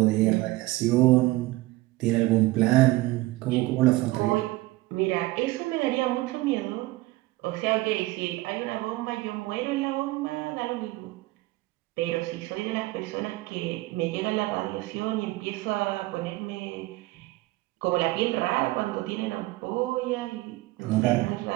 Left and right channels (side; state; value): left; quieter; 19.4 dB